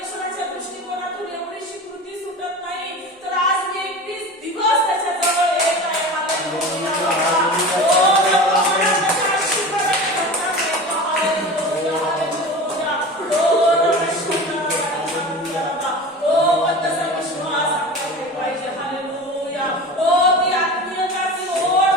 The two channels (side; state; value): both; normal; correlation 0.33